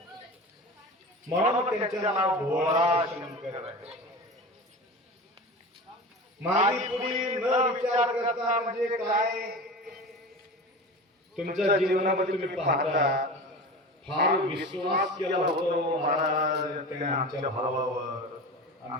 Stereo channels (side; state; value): both; normal; correlation 0.32